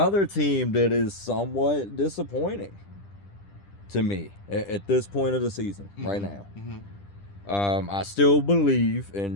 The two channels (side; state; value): right; late; 10 ms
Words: team that is somewhat disappointing to me at this point of the season right now. I still believe